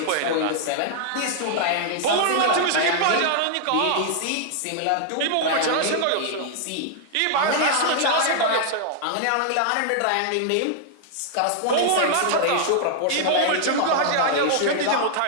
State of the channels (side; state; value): both; different; correlation -0.01